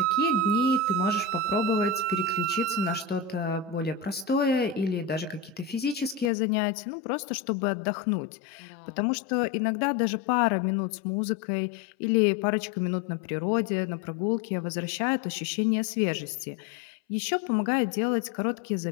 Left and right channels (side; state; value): right; drops out; at 6.3 s